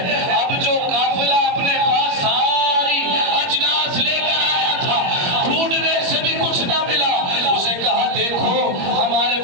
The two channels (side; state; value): left; late; 21 ms